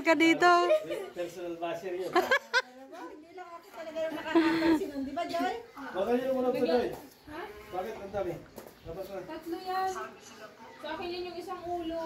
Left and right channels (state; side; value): identical; both; correlation 1.00